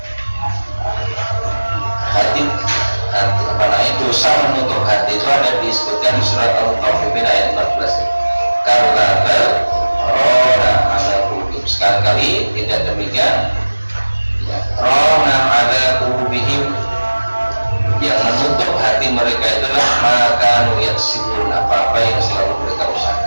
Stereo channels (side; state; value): both; inverted; correlation -1.00